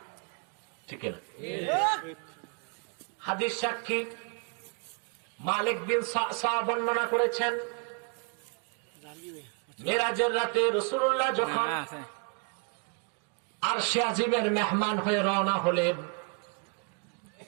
ঠিক না? হাদিস সাক্ষী মালিক বিন সা'সা বর্ণনা করেছেন, মেরাজের রাতে রাসূলুল্লাহ যখন আরশে আজিমের মেহমান হয়ে রওনা হলেন,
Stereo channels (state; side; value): quieter; left; 35.8 dB